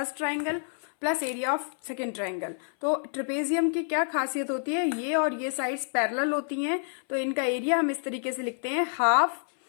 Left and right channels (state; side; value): silent; right; 59 dB below the other